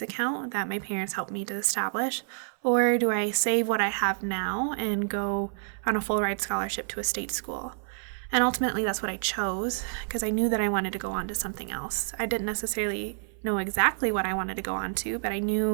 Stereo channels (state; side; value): silent; left; 56 dB below the other